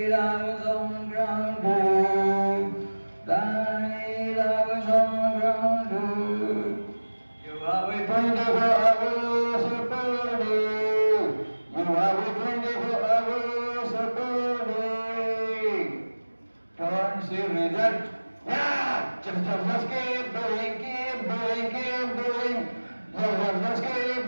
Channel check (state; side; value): inverted; both; correlation -1.00